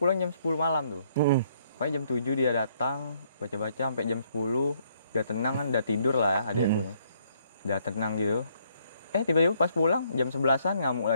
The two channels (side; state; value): both; inverted; correlation -0.69